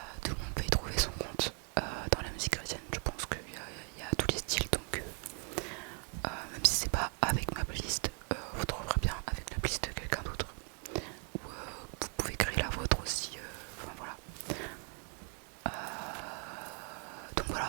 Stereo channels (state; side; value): quieter; left; 37.8 dB